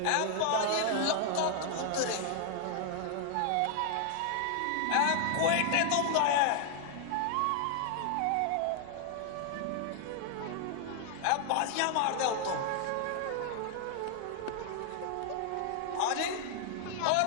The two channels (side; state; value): both; different; correlation 0.00